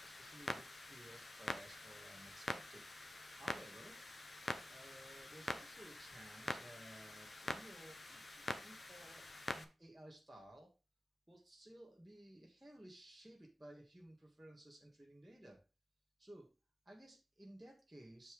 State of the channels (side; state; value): both; normal; correlation 0.90